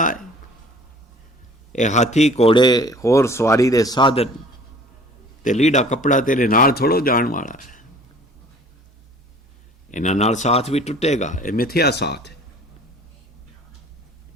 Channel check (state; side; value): normal; both; correlation 0.50